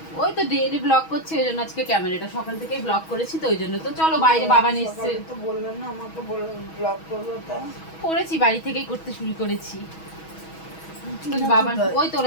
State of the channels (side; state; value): right; late; 6.2 ms